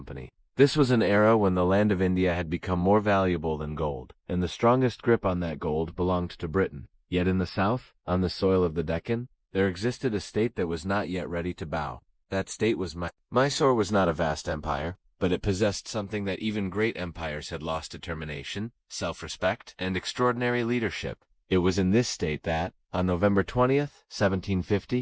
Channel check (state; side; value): identical; both; correlation 1.00